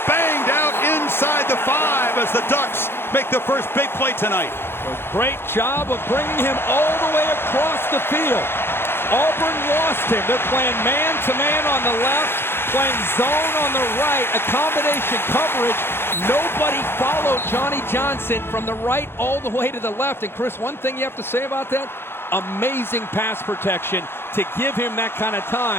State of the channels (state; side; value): late; right; 0.11 ms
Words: banged out inside the 5 as the Ducks make the first big play tonight. A great job of bringing him all the way across the field. Auburn lost him. They're playing man-to-man on the left, playing zone on the right, a combination coverage. Nobody followed Johnny Johnson from the right all the way to the left. And Chris, one thing you have to say about that, amazing pass protection to give him that kind of